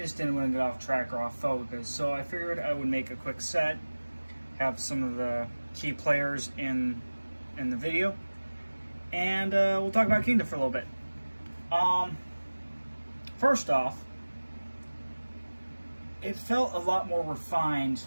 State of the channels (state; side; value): inverted; both; correlation -1.00